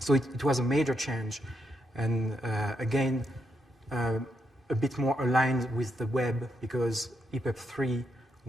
it was a major change, and again, a bit more aligned with the web, because EPUB 3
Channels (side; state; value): both; normal; correlation 0.80